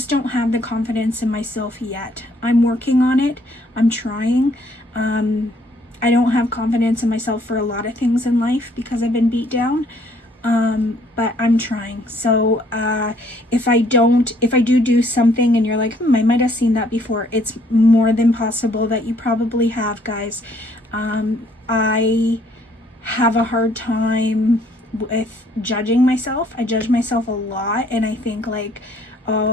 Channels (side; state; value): both; normal; correlation 0.64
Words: don't have the confidence in myself yet. I'm working on it. I'm trying. I don't have confidence in myself for a lot of things in life because I've been beat down, but I'm trying. So if I do something and you're like, I might have seen that before, it's more than possible that you probably have, guys. I have a hard time with judging myself. I judge myself a lot, and I think like,